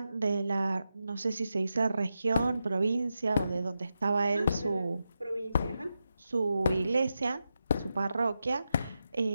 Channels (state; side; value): inverted; both; correlation -0.88